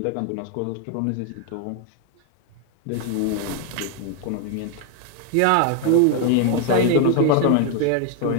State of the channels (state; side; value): different; both; correlation 0.00